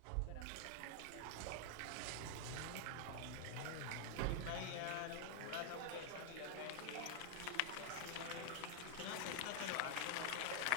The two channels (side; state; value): both; different; correlation 0.00